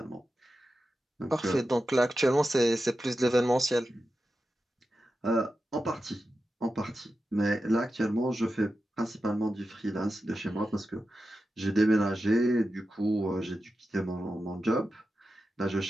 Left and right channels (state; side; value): normal; both; correlation 0.91